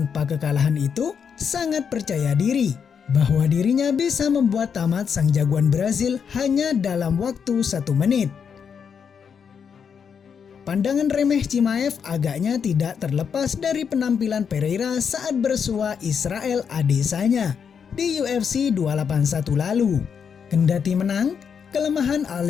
kekalahan itu sangat percaya diri bahwa dirinya bisa membuat tamat sang jagoan Brazil hanya dalam waktu 1 menit. Pandangan remeh Chimaev agaknya tidak terlepas dari penampilan Pereira saat bersua Israel Adesanya di UFC 281 lalu. Kendati menang, kelemahan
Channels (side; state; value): right; quieter; 6.9 dB